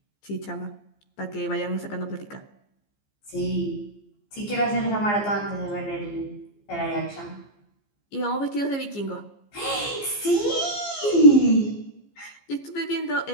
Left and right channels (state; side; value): late; right; 15 ms